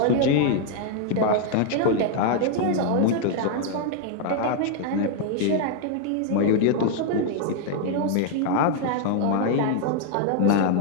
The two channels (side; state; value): both; different; correlation 0.00